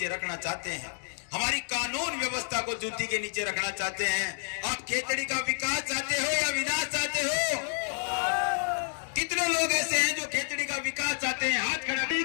रखना चाहते हैं, हमारी कानून व्यवस्था को जूती के नीचे रखना चाहते हैं। आप खेतड़ी का विकास चाहते हो या विनाश चाहते हो? कितने लोग ऐसे हैं जो खेतड़ी का विकास चाहते हैं? हाथ खड़ा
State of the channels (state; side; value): silent; right; 58 dB below the other